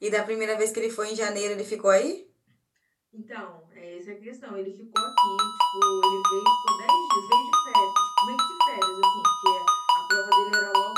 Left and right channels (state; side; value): identical; both; correlation 1.00